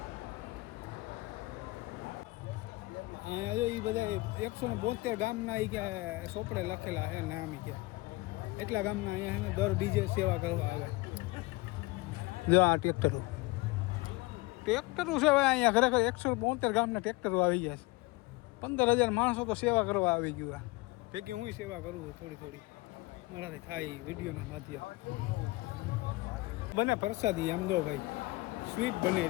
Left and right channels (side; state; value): right; quieter; 22.7 dB